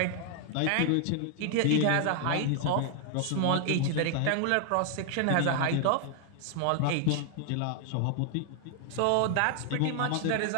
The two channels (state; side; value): different; both; correlation 0.00